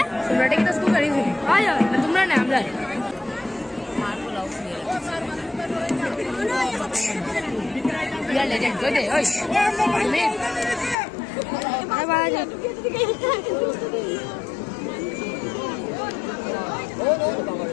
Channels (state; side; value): drops out; right; at 11.0 s